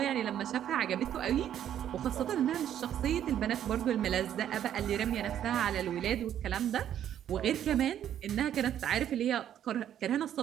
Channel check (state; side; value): quieter; left; 10.4 dB